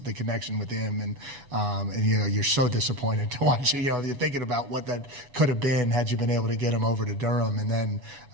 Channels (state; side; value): late; left; 7.1 ms